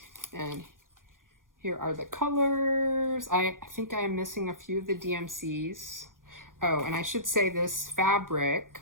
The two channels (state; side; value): late; left; 0.90 ms